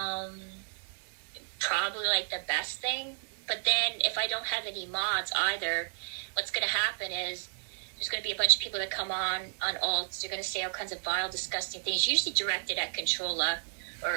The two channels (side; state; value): left; silent; 56 dB below the other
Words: Probably, like, the best thing. But then, if I don't have any mods either, what's going to happen is there's going to be a bunch of people that come on alts. They're going to say all kinds of vile, disgusting things, usually directed at Controlla